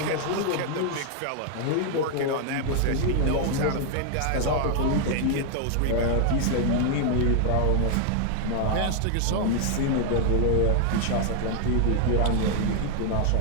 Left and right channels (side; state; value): both; different; correlation 0.00